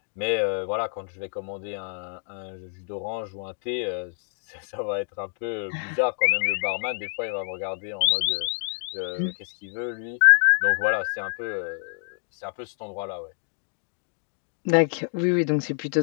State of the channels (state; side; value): silent; right; 56 dB below the other